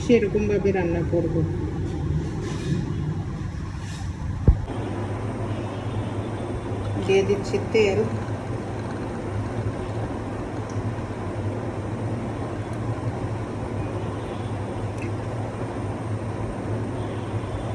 সেরকমভাবে রান্না করব। দিয়ে দিচ্ছি তেল,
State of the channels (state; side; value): identical; both; correlation 1.00